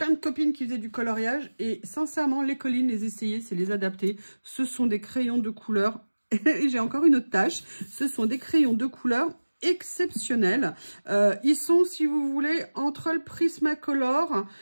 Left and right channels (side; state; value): both; inverted; correlation -1.00